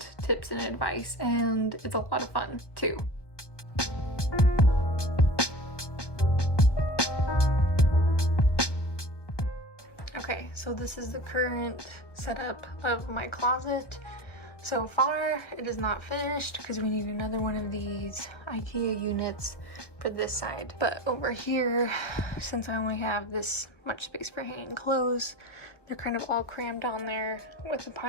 tips and advice, and it's a lot of fun too. Okay, so this is the current setup of my closet. So far, it is not finished because we need another one of these IKEA units for this side. But over here, since I only have this much space for hanging clothes, they're kind of all crammed on there with a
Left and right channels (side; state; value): right; late; 1.2 ms